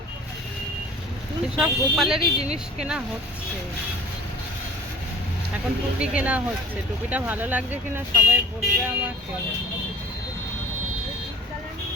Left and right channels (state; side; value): normal; both; correlation 0.48